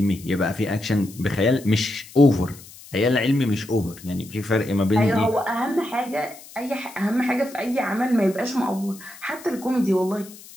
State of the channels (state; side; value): noise; left; hiss, 19 dB below the sound